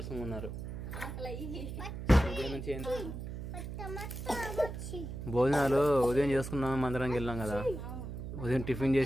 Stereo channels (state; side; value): noise; right; hum, 7 dB below the sound